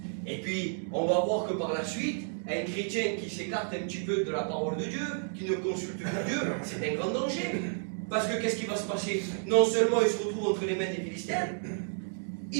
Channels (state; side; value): silent; left; digital silence